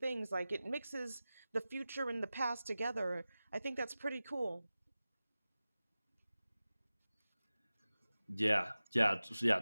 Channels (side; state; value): both; inverted; correlation -0.96